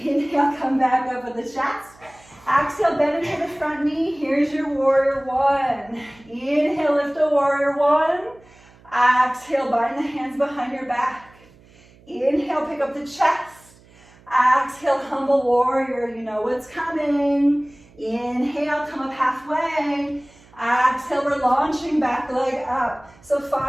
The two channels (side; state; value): right; noise; hum, 27 dB below the sound